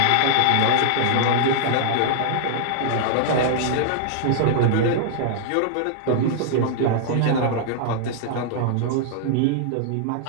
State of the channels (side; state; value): both; different; correlation -0.01